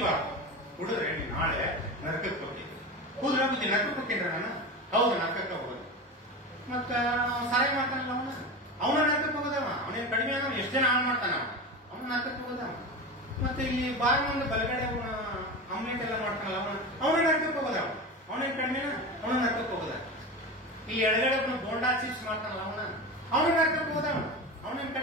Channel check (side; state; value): both; normal; correlation 0.26